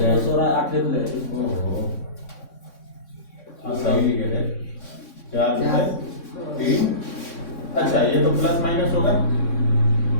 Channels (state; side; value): late; right; 3.6 ms